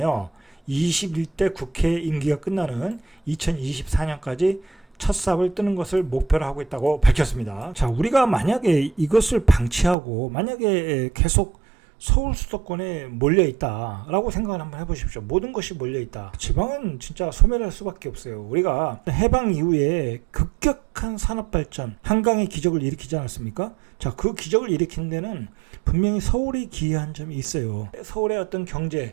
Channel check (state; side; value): drops out; left; at 10.0 s